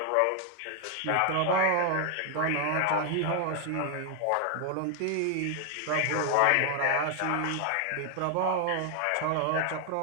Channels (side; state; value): both; different; correlation 0.00